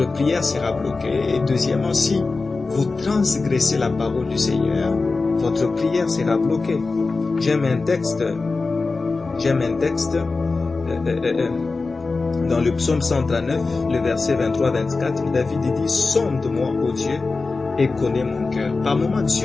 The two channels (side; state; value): right; quieter; 3.9 dB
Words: prière sera bloquée. Et deuxièmement, si vous transgressez la parole du Seigneur, votre prière sera bloquée. J'aime un texte Dans le psaume 139, le verset 23-24, David dit « Sonde-moi, ô Dieu, et connais mon cœur. » Par moments,